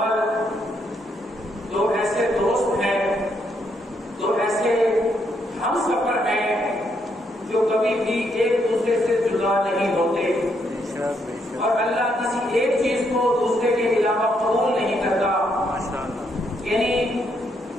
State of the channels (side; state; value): both; normal; correlation 0.75